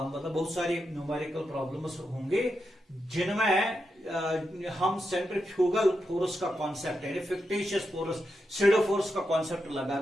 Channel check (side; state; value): both; normal; correlation 0.86